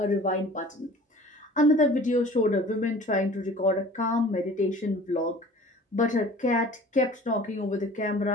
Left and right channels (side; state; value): both; normal; correlation 0.46